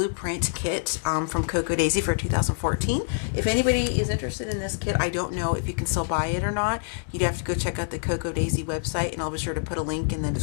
kit from Cocoa Daisy for 2014. If anybody is interested in this kit, I don't know if you can still buy it or not. You'd have to go check out the Cocoa Daisy website, and I'll be sure to put a link in the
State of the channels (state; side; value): silent; right; digital silence